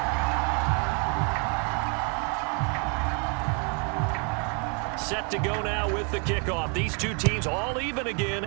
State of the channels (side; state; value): left; quieter; 36.6 dB